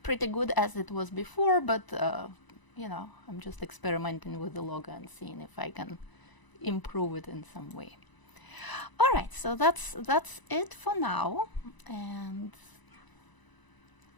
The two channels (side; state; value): right; late; 1.0 ms